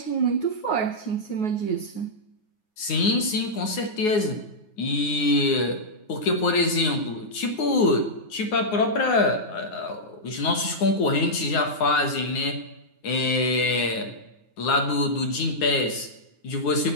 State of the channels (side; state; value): right; late; 9.5 ms